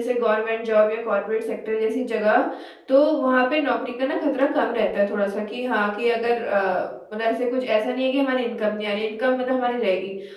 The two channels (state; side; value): identical; both; correlation 1.00